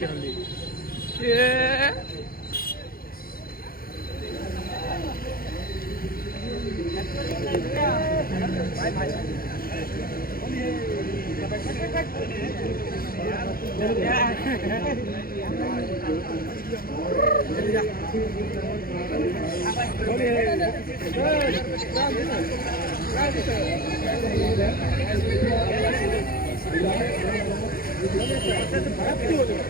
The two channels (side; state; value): right; late; 0.43 ms